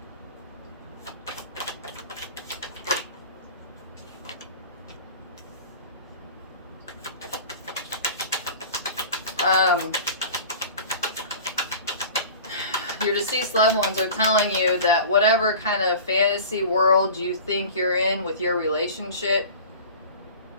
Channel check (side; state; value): both; inverted; correlation -0.39